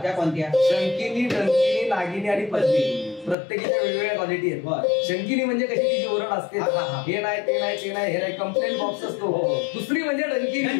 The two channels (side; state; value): right; drops out; at 3.4 s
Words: त्या कोणत्या शंकिनी, डंकिनी, नागिनी आणि पद्मिनी प्रत्येकीच्या वेगवेगळ्या क्वालिटी आहेत. बरं. शंकिनी म्हणजे कशी तिची ओरड असते, हा, हा, हा. हे नाही ते नाही ते नाही, हे नाही, कंप्लेंट बॉक्स असतो. दुसरी म्हणजे डंकिनी,